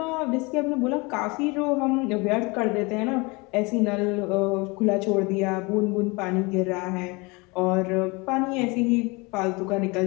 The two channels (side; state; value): right; quieter; 26.7 dB